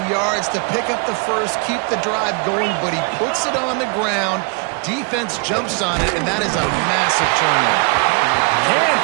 yards to pick up the first, keep the drive going, but he puts it on the ground. Defense jumps on it, and that is a massive turnover. Can't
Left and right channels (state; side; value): quieter; left; 34.8 dB